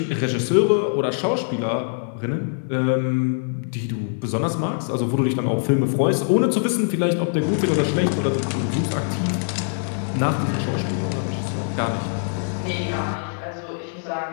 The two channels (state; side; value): silent; right; digital silence